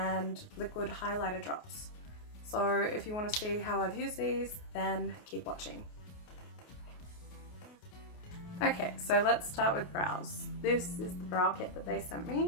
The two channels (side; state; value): right; late; 28 ms